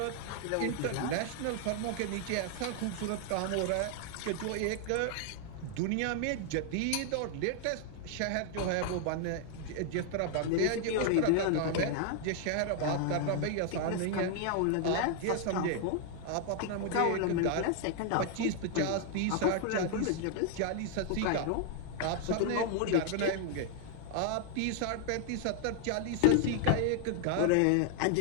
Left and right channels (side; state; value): both; different; correlation 0.00